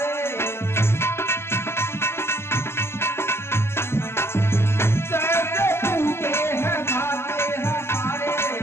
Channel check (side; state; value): right; late; 0.12 ms